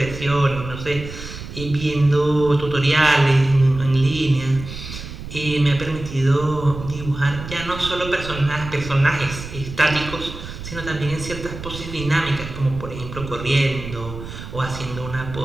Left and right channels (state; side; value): noise; right; rumble, 11 dB below the sound